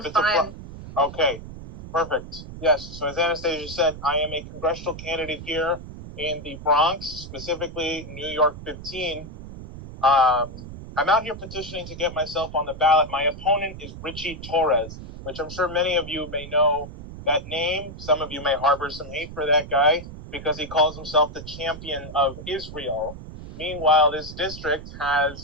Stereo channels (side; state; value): right; noise; rumble, 12 dB below the sound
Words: it's fine. Okay, perfect. Yes, so as Anastasia said, I am a congressional candidate here in the Bronx, specifically New York 15. I'm out here petitioning to get myself on the ballot. My opponent is Richie Torres, which I'm sure many of you may know that name. Some of you may harbor some hate for that guy because he calls himself the champion of Israel. Meanwhile, this district